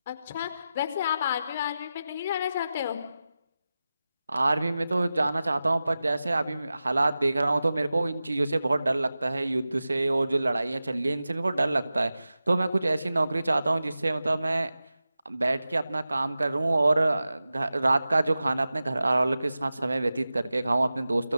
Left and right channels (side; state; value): both; inverted; correlation -0.94